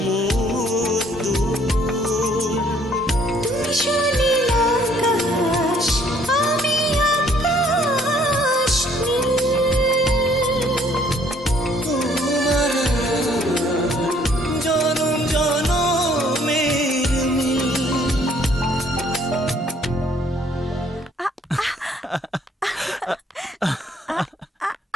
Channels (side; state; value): both; normal; correlation 0.62